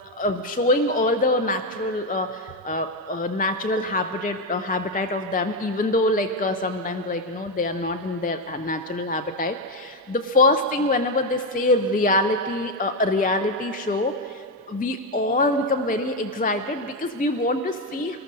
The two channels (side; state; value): both; normal; correlation 0.08